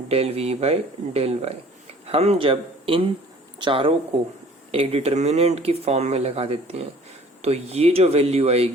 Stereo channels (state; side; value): normal; both; correlation 0.51